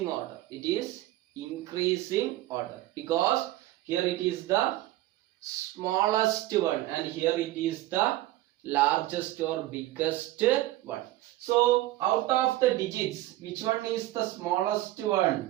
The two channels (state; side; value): quieter; left; 16.2 dB